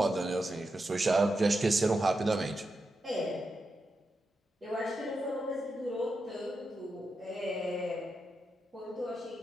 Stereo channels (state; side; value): normal; both; correlation 0.87